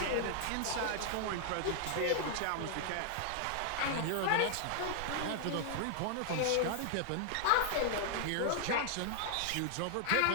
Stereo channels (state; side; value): different; both; correlation -0.01